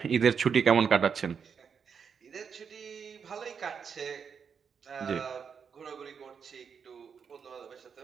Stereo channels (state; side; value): quieter; left; 6.6 dB